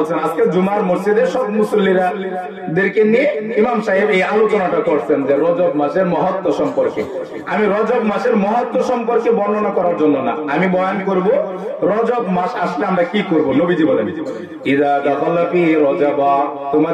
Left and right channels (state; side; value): identical; both; correlation 1.00